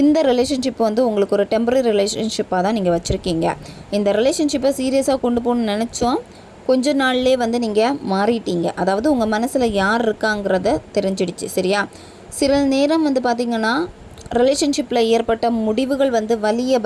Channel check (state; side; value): identical; both; correlation 1.00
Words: ரிலேஷன்ஷிப் வந்து உங்களுக்கு ஒரு டெம்பரரி ரிலேஷன்ஷிப்பாக தான் நீங்கள் வச்சுருக்கீங்க. இந்த ரிலேஷன்ஷிப்பை சீரியஸாக கொண்டு போகணுன்னு நினச்சோம், கொஞ்ச நாள்லே வந்து நீங்கள் மாறிட்டீங்க. அதாவது உங்கள் மனசில் யார் இருக்காங்கிறத தெரிஞ்சிடுச்சு. சரியா, சில நேரம் வந்து பார்த்திங்கன்னா ரிலேஷன்ஷிப்பில் ஏற்பட்ட முடிவுகள் வந்து வலியை